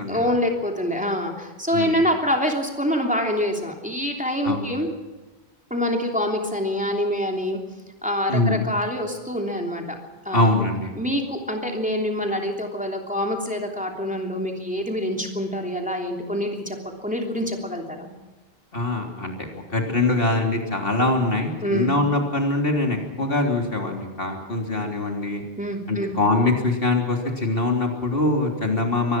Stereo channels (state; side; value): normal; both; correlation 0.08